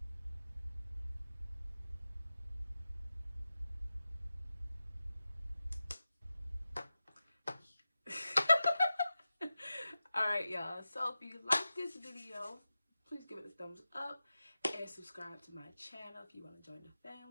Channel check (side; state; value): both; inverted; correlation -0.94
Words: Alright, y'all. So if you like this video, please give it a thumbs up and subscribe to my channel if you want to join the